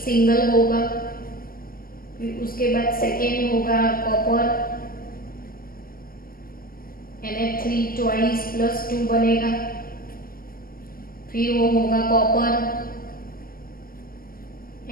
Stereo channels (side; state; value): right; late; 0.42 ms